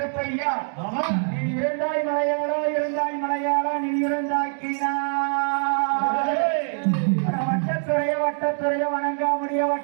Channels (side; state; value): left; silent; 57 dB below the other